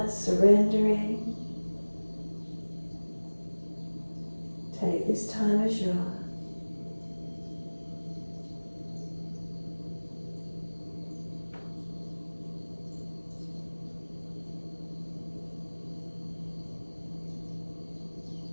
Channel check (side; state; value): both; inverted; correlation -1.00